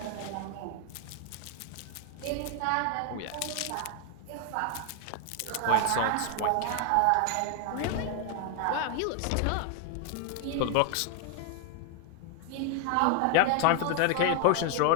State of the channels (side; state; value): both; different; correlation 0.00